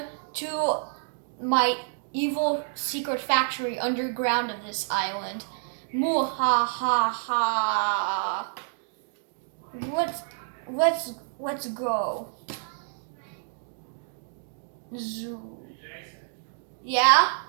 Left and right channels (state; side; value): silent; left; digital silence